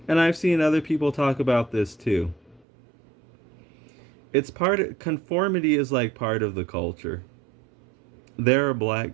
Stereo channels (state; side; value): drops out; left; at 2.6 s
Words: And I've seen other people talk about this too. It's part of, conformity is like part of the culture. There are